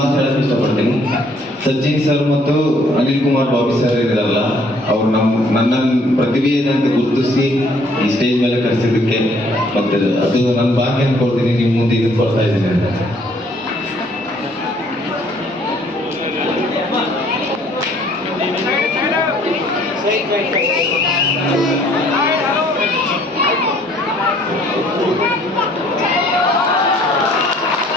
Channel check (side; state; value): both; normal; correlation 0.61